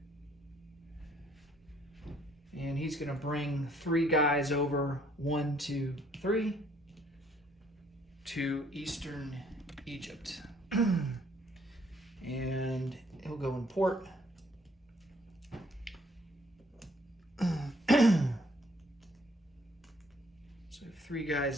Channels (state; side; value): normal; both; correlation 0.64